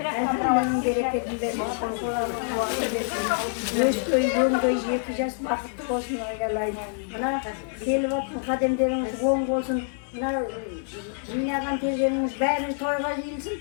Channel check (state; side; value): silent; right; digital silence